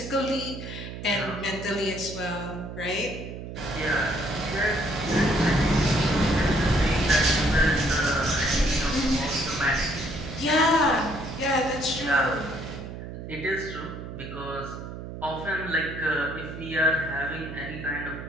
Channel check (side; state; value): right; noise; hum, 10 dB below the sound